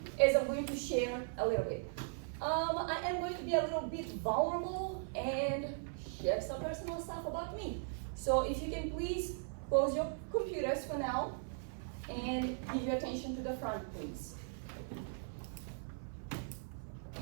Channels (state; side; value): silent; left; 52 dB below the other